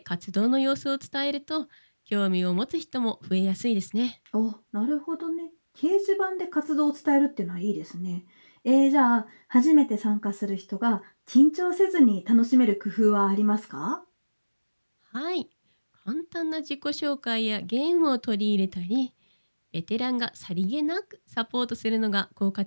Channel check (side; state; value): both; inverted; correlation -1.00